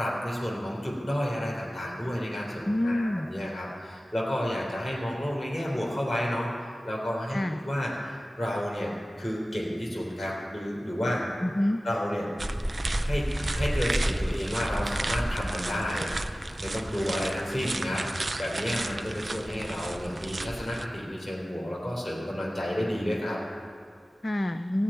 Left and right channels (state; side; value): normal; both; correlation 0.96